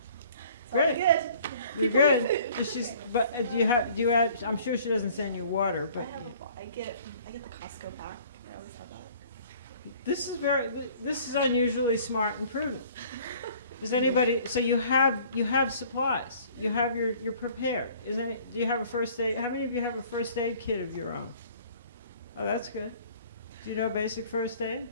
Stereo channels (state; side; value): inverted; both; correlation -0.53